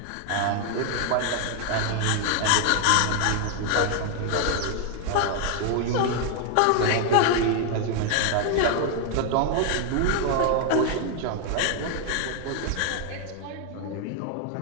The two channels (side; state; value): both; different; correlation 0.00